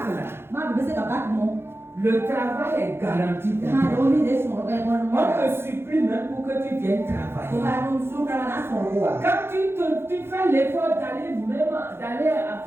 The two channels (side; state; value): left; late; 0.11 ms